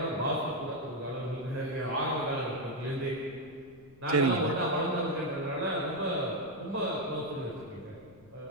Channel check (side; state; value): left; noise; rumble, 25 dB below the sound